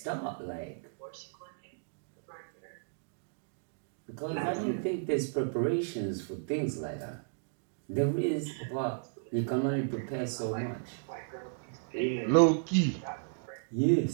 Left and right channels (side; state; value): left; silent; digital silence